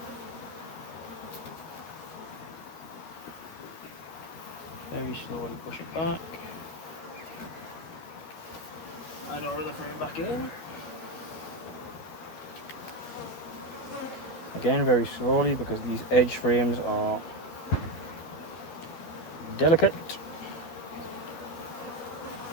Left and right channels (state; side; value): late; right; 12 ms